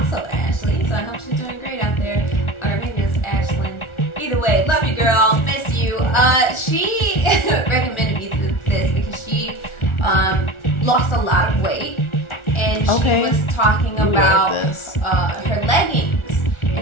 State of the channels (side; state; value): right; late; 1.4 ms